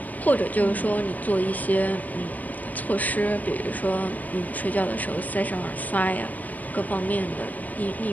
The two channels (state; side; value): late; right; 0.077 ms